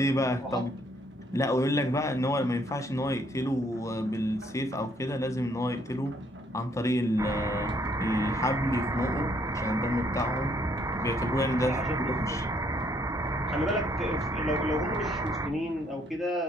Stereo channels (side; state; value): both; normal; correlation 0.67